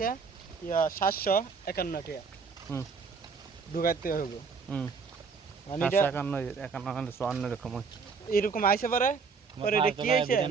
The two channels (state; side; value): quieter; left; 5.3 dB